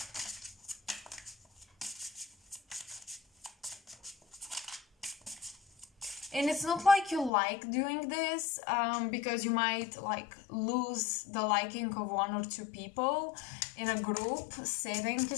And it's not like you like doing this because you might like lose the liking of one or two people. in a group setting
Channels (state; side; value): drops out; right; at 7.3 s